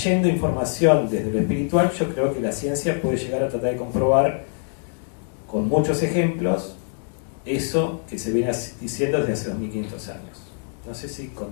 información desde lo espiritual, yo creo que la ciencia puede llegar a tratar de comprobar con muchos ejemplos eso que se viene diciendo desde hace 2500 años. No sé si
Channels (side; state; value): right; silent; 57 dB below the other